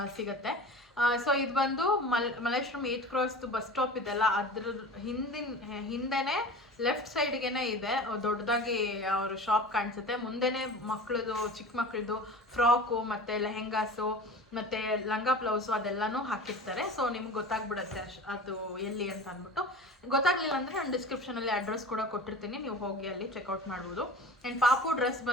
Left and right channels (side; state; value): both; normal; correlation 0.36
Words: ಸಿಗುತ್ತೆ. ಸೊ ಇದು ಬಂದು ಮಲ್ಲೇಶ್ವರಂ 8th ಕ್ರಾಸ್ದು ಬಸ್ ಸ್ಟಾಪ್ ಇದೆಲ್ಲ, ಅದ್ರ ಹಿಂದೆನೇ ಲೆಫ್ಟ್ ಸೈಡ್ಗೆನೆ ಇದೆ ದೊಡ್ಡದಾಗಿ ಅವ್ರ ಶಾಪ್ ಕಾಣಿಸುತ್ತೆ. ಮುಂದೆನೇ ಮಕ್ಕಳದು, ಚಿಕ್ಕ ಮಕ್ಕಳದು ಫ್ರಾಕು ಮತ್ತು ಲೆಹೆಂಗಾಸು ಮತ್ತು ಲಂಗ ಬ್ಲೌಸು ಅದೆಲ್ಲನೂ ಹಾಕಿರ್ತಾರೆ. ಸೊ ನಿಮ್ಗೆ ಗೊತ್ತಾಗ್ಬಿಡುತ್ತೆ ಅದು ಎಲ್ಲಿ ಅಂತ ಅಂದ್ಬಿಟ್ಟು. ಗೊತ್ತಾಗಲಿಲ್ಲ ಅಂದರೆ ನಾನು ಡಿಸ್ಕ್ರಿಪ್ಷನಲ್ಲಿ ಅಡ್ರೆಸ್ ಕೂಡ ಕೊಟ್ಟಿರ್ತೀನಿ, ನೀವು ಹೋಗಿ ಅಲ್ಲಿ ಚೆಕ್ಔಟ್ ಮಾಡ್ಬೋದು. ಆ್ಯಂಡ್ ಪಾಪು ಡ್ರೆಸ್